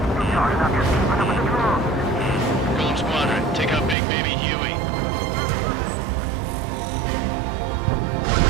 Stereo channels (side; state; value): left; drops out; at 4.0 s